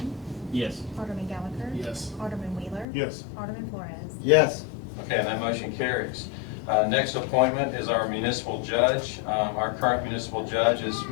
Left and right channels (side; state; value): right; drops out; at 2.9 s